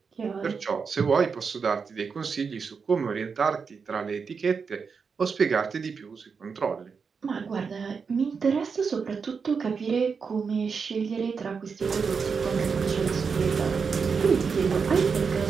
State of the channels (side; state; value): left; quieter; 5.6 dB